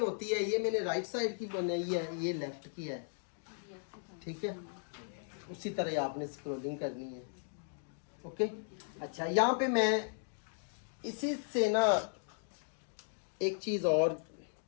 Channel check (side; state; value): right; silent; digital silence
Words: होती है, ये मैंने राइट साइड की बनाई है, ये लेफ्ट की है, ठीक है। उसी तरह आपने स्क्रॉलिंग करनी है, ओके। अच्छा, यहाँ पे मैं इसी से ना एक चीज़ और,